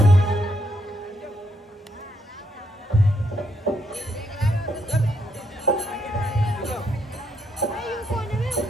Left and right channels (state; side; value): normal; both; correlation 0.76